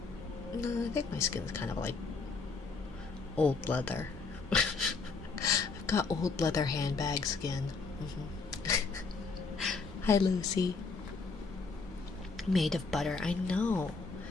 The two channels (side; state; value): right; quieter; 4.4 dB